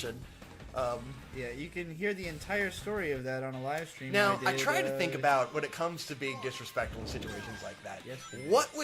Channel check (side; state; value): both; identical; correlation 1.00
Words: Yeah, you can hear the entire story of that on a live stream. Now, I did, try to think about when it comes to being disrespectful in situations like that. Yes. What